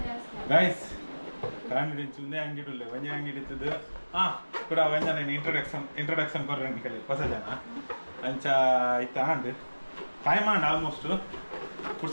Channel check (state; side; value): inverted; both; correlation -1.00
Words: ಗೈಸ್ ಕಾಮಿಡಿ ಚುಂದೆ ಅಂಗಡಿ ವಂಜೆ ಅಂಗಡಿ ಇತ್ತದು ಕೂಡ ವಂಜನ ಇಂಟ್ರೊಡಕ್ಷನ್ ಕೊರ್ರಂಡಿ ಕಲಿ ಹೊಸ ಜನ ಅಂಚ ಇತ್ತ ಅಂಡ್ ಟೈಮ್ ಅಂಡ್ ಆಲ್ಮೋಸ್ಟ್